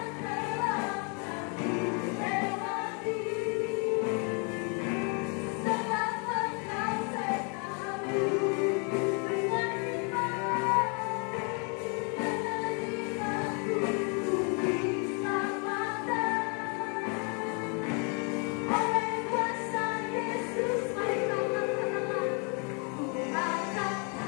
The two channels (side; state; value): right; quieter; 36.5 dB